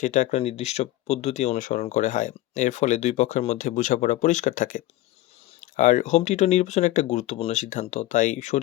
একটা নির্দিষ্ট পদ্ধতি অনুসরণ করে হয়। এর ফলে ২ পক্ষের মধ্যে বোঝাপড়া পরিষ্কার থাকে। আর হোম টিউটর নির্বাচন একটা গুরুত্বপূর্ণ সিদ্ধান্ত। তাই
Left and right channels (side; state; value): right; quieter; 16.1 dB